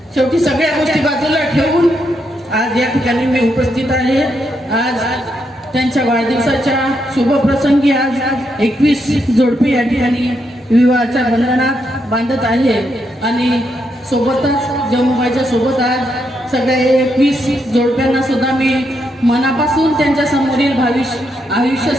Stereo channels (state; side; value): normal; both; correlation 0.80